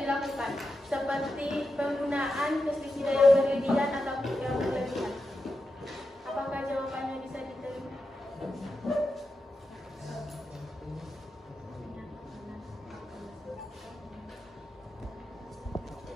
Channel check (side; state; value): both; normal; correlation 0.89